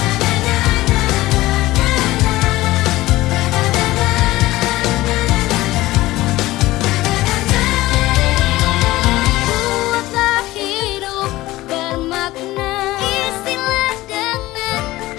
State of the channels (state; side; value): quieter; right; 17.7 dB